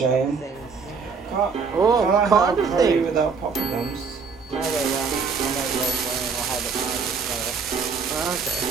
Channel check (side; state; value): left; quieter; 5.3 dB